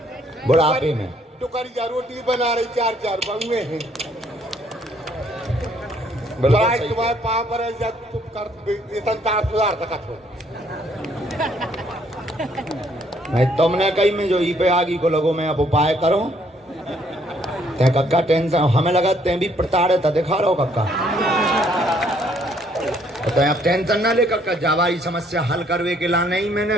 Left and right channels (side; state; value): both; normal; correlation 0.66